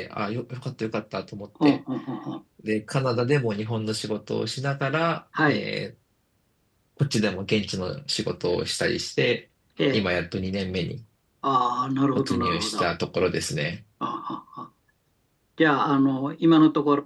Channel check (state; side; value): identical; both; correlation 1.00